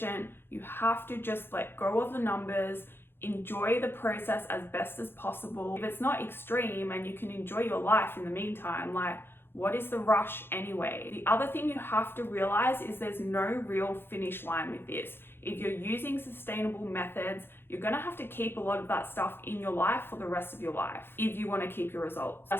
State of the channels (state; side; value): late; right; 0.11 ms